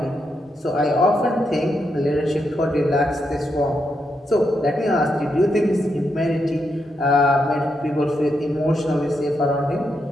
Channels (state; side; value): normal; both; correlation 0.82